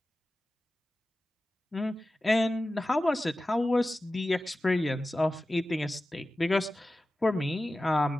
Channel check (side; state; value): both; normal; correlation 0.95